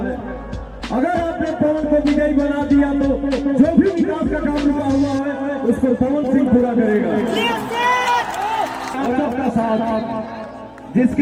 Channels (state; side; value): identical; both; correlation 1.00